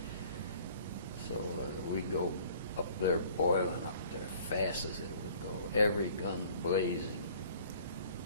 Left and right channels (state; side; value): inverted; both; correlation -0.53